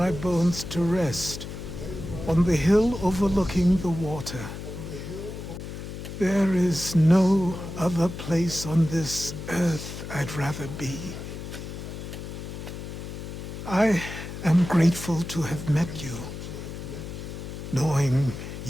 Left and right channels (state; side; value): noise; left; hum, 9 dB below the sound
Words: bones to rest on the hill overlooking the water. There is no other place on this earth I'd rather be. I am grateful to have met you, knowing